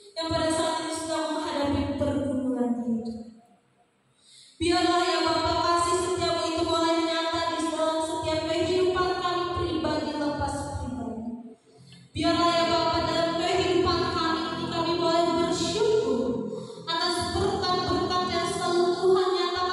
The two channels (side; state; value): both; identical; correlation 1.00